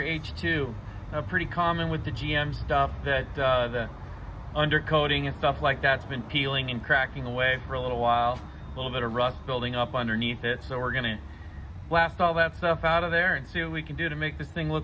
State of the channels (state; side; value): identical; both; correlation 1.00